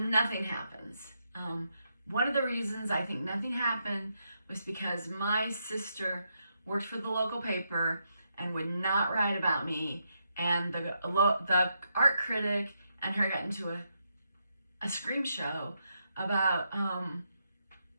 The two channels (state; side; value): inverted; both; correlation -0.81